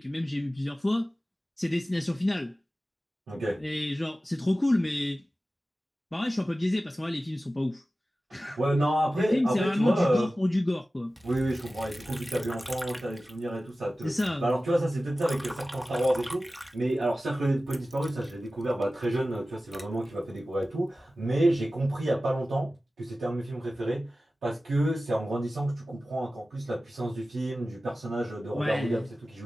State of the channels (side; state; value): both; normal; correlation 0.95